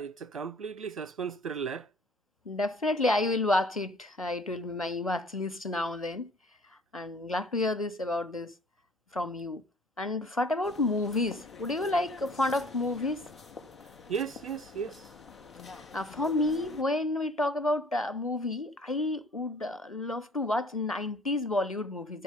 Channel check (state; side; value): normal; both; correlation 0.52